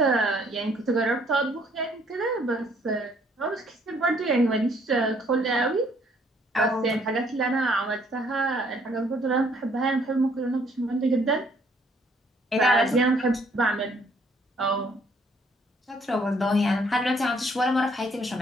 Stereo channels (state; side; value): normal; both; correlation 0.64